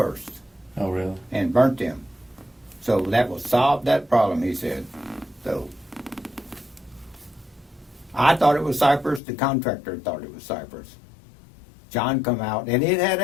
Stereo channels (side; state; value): right; drops out; at 9.2 s